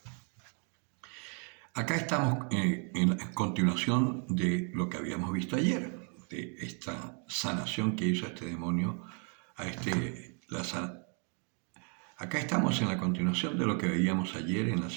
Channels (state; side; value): quieter; left; 39.7 dB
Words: Acá estamos en la continuación de lo que habíamos visto ayer, de esta sanación que hizo este demonio a Acá estamos en la continuación de lo que veíamos ayer en la